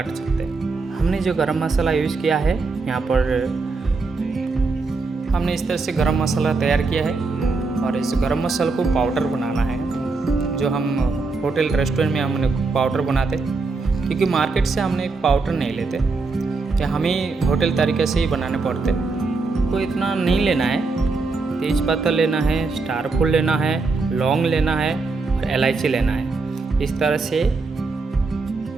सकते हैं। हमने जो गरम मसाला यूज़ किया है यहाँ पर, हमने इस तरह से गरम मसाला तैयार किया है। और इस गरम मसाला को पाउडर बनाना है, जो हम होटल रेस्टोरेंट में हमने पाउडर बनाते, क्योंकि मार्केट से हमने पाउडर नहीं लेते, कि हमें होटल तरीके से ही बनाने पड़ते। को इतना नहीं लेना है। तेज़पत्ता लेना है, स्टार फूल लेना है, लौंग लेना है और इलायची लेना है। इस तरह से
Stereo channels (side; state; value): left; quieter; 4.0 dB